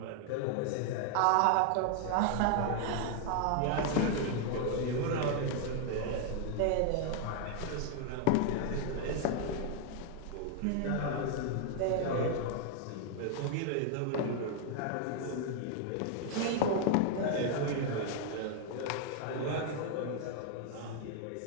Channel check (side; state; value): both; different; correlation 0.00